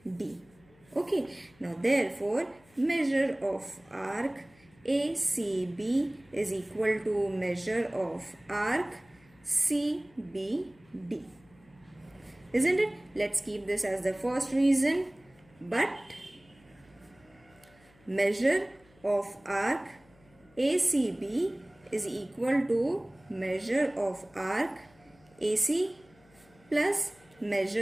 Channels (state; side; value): noise; left; hum, 29 dB below the sound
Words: Okay, now therefore measure of arc ACB is equal to measure of arc CBD. Isn't it? Let's keep this as the first reason. But measure of arc ACB is equal to measure of arc AC plus